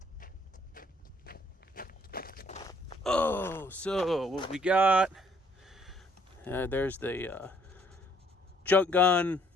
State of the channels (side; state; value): both; normal; correlation 0.64